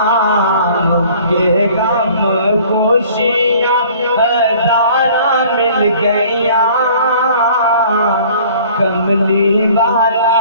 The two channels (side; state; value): both; inverted; correlation -0.51